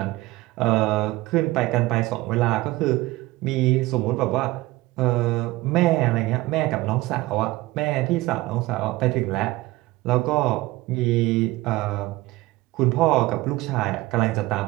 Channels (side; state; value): left; quieter; 19.1 dB